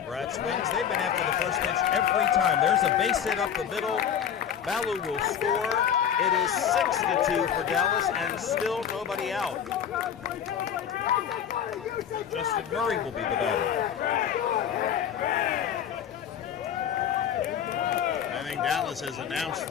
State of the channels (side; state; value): right; quieter; 8.7 dB